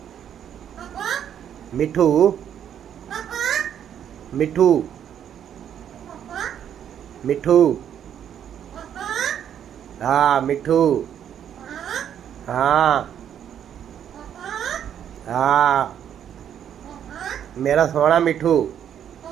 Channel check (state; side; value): quieter; left; 9.4 dB